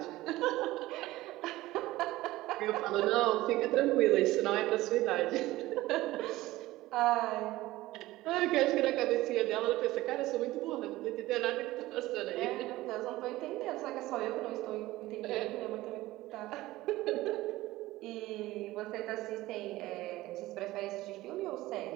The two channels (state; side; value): quieter; left; 17.5 dB